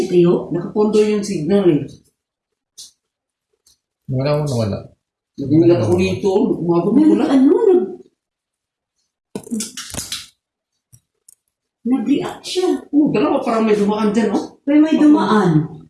kayo? nakapondo yung signal eh. Nawala. Nagulat ako dito. Umabot ko lang. Nag-react siya. Dalawa parang may dumaan dyan, oh. Pero may dumaan.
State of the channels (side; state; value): both; identical; correlation 1.00